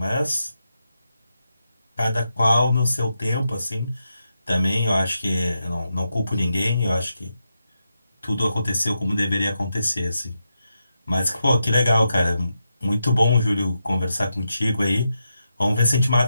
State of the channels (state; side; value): inverted; both; correlation -0.86